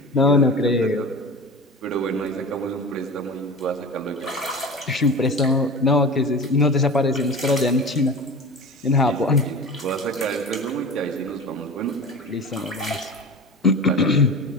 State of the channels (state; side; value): normal; both; correlation 0.33